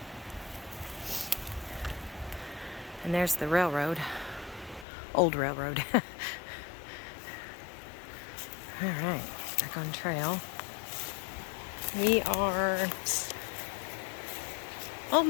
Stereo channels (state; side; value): drops out; right; at 4.9 s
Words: And there's the railroad. Old railroad. All right, back on trail. We are